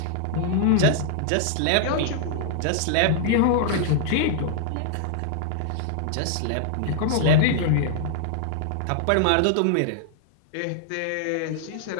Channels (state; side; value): different; both; correlation -0.01